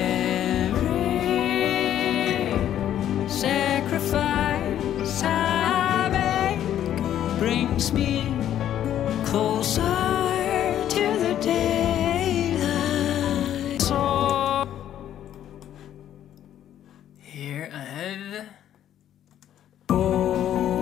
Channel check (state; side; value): quieter; right; 11.1 dB